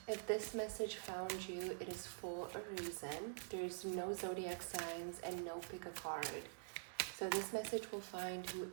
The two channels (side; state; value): left; silent; digital silence